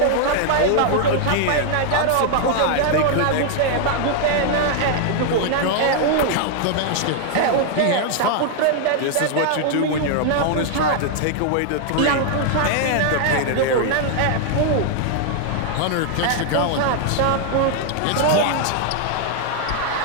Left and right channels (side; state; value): both; different; correlation 0.00